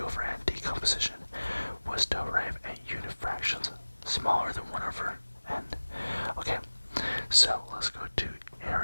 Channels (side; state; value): both; inverted; correlation -1.00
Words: over n decomposition was to arrive at unit fractions smaller than 1 over n. Okay, so let's go to